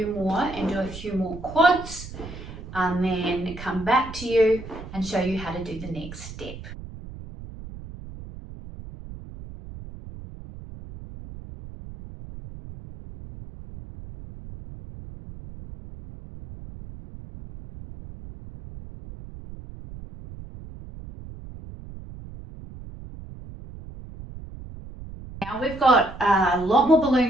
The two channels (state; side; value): noise; right; rumble, 14 dB below the sound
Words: more and do a few more quads, and then come back to you and show you how to do the next step. Now we've got a lot more